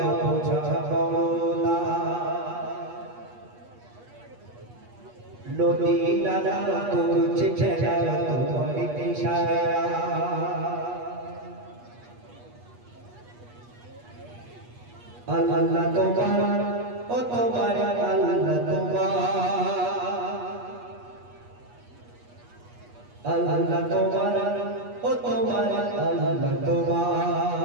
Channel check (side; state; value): left; late; 8.3 ms